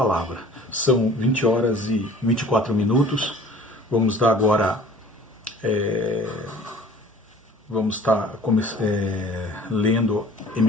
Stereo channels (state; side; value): normal; both; correlation 0.48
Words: São 20 horas e 24 minutos. Vamos dar agora, vamos estar lendo e